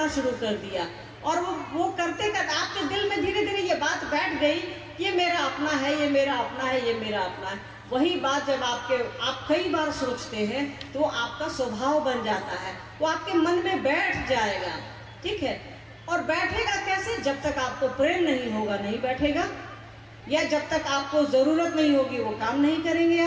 शुरू कर दिया और वो करते करते आपके दिल में धीरे धीरे ये बात बैठ गई, ये मेरा अपना है, ये मेरा अपना है, ये मेरा अपना है। वही बात जब आप कई बार सोचते हैं तो आपका स्वभाव बन जाता है, वो आपके मन में बैठ जाएगा, ठीक है। और बैठेगा कैसे? जब तक आपको प्रेम नहीं होगा नहीं बैठेगा, या जब तक आपको ज़रूरत नहीं होगी वो काम नहीं करेंगे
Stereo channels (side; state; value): both; identical; correlation 1.00